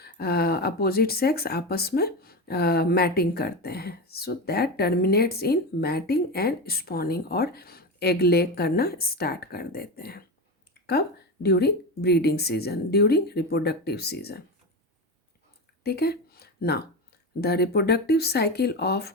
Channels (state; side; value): normal; both; correlation 0.20